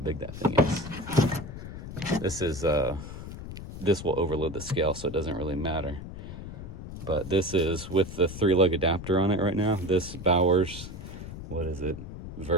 that thing is. This will overload the scale, so it doesn't really matter. But this is with the 3-lug adapter on it right now. This Bowers, what is it,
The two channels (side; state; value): left; noise; rumble, 10 dB below the sound